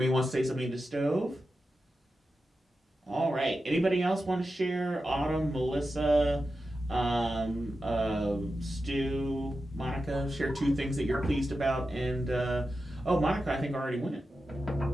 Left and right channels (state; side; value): normal; both; correlation 0.91